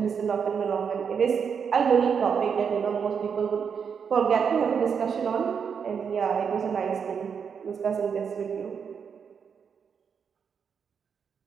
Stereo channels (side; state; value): left; quieter; 6.7 dB